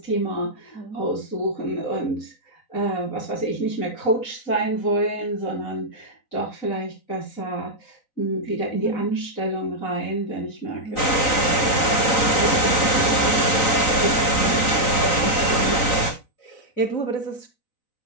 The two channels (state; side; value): late; right; 3.9 ms